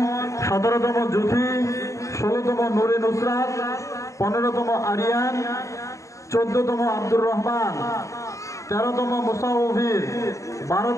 17তম জুথি, 16তম নুরে নুসরাত, 15তম আরিয়ান, 14তম আব্দুর রহমান, 13তম মুসাউফির,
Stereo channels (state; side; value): late; right; 0.15 ms